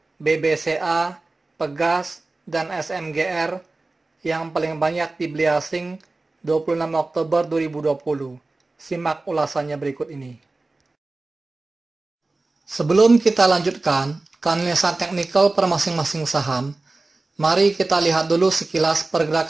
BBCA, Pegas, dan SMGR yang paling banyak dibeli asing 26 Oktober 2020. Simak ulasannya berikut ini. Sebelum kita lanjutkan ke analisa teknikal per masing-masing saham, mari kita lihat dulu sekilas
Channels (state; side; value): quieter; left; 3.3 dB